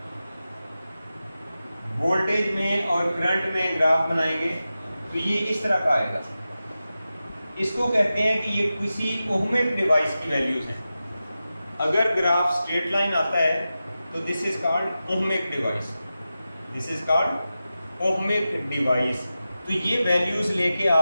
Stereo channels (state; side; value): inverted; both; correlation -0.93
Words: वोल्टेज में और करंट में ग्राफ बनाएंगे तो ये इस तरह का आएगा। इसको कहते हैं कि ये किसी ओहमिक डिवाइस की वैल्यूज हैं। अगर ग्राफ स्ट्रेट लाइन आता है तो this is called ohmic device, this is called ohmic device. तो ये वैल्यूज लेके